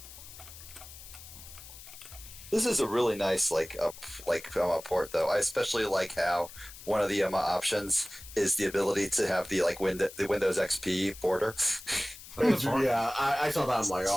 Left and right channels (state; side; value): noise; left; hiss, 16 dB below the sound